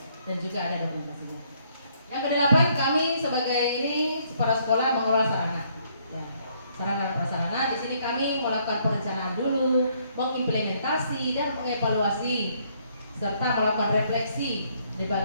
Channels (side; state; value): both; inverted; correlation -0.68